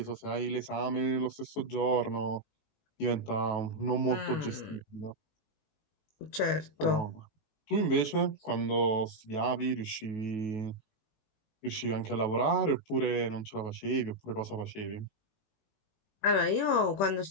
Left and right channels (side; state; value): right; late; 19 ms